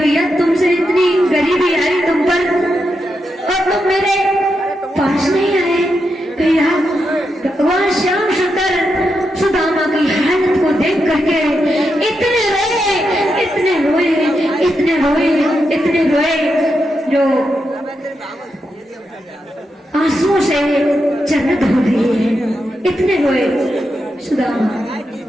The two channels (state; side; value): normal; both; correlation 0.85